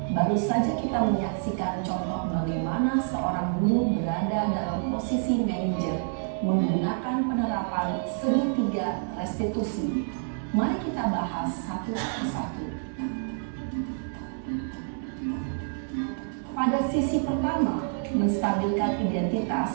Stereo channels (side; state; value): left; silent; 60 dB below the other